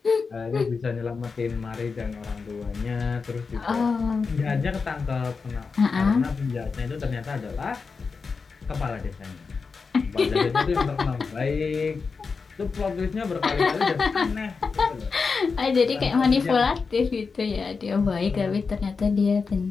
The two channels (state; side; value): quieter; right; 4.9 dB